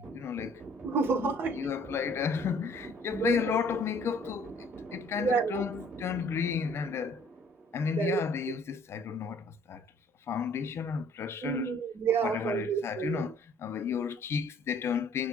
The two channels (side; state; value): both; normal; correlation 0.57